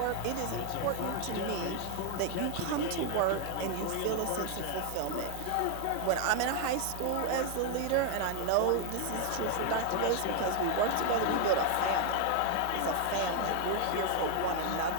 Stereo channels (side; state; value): both; different; correlation 0.00